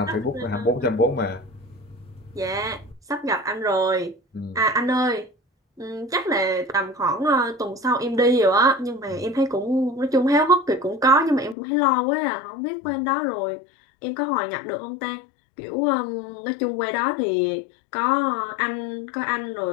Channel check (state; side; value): drops out; right; at 11.6 s